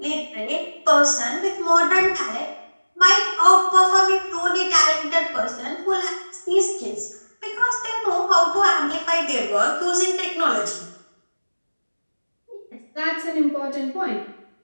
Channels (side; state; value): both; inverted; correlation -1.00